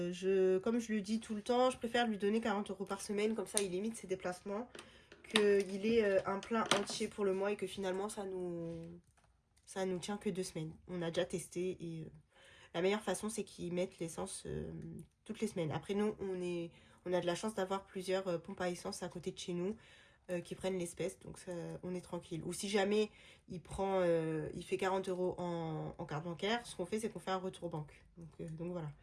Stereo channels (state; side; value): identical; both; correlation 1.00